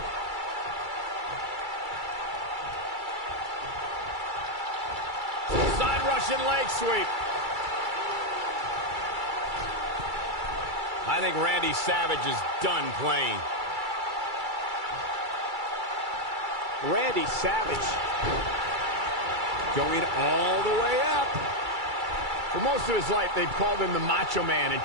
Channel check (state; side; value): late; left; 2.3 ms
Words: side Russian leg sweep. I think Randy Savage is done playing. Randy Savage going all the way up. For most of his life, they've called him the Macho Man, and